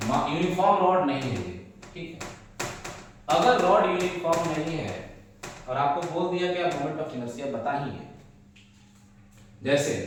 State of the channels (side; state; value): both; identical; correlation 1.00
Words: uniform rod नहीं है, ठीक है, अगर रॉड यूनिफॉर्म नहीं है और आपको बोल दिया कि आप मोमेंट ऑफ इनर्शिया बताइए, जैसे